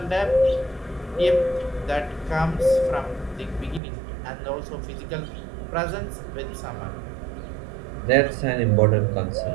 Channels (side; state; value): left; drops out; at 3.8 s